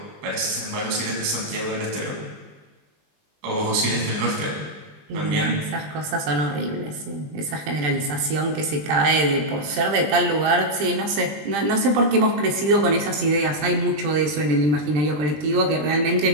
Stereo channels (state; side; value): late; left; 20 ms